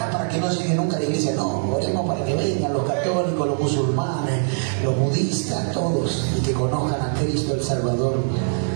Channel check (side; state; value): left; silent; digital silence